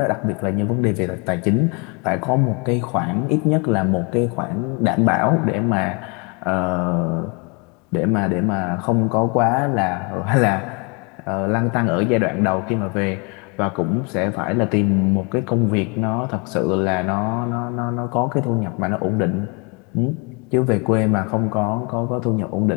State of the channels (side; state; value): right; quieter; 32.5 dB